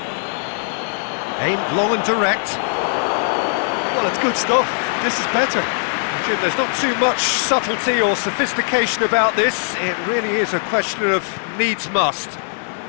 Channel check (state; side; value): silent; right; digital silence